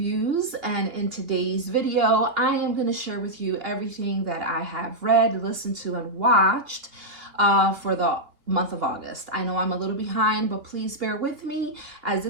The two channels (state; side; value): late; left; 2.8 ms